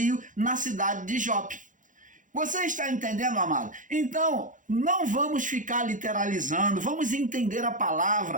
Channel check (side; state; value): left; late; 0.37 ms